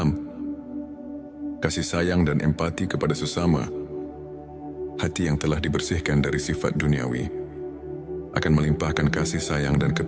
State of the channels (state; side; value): identical; both; correlation 1.00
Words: Kasih sayang dan empati kepada sesama. Hati yang telah dibersihkan dari sifat duniawi akan melimpahkan kasih sayang dan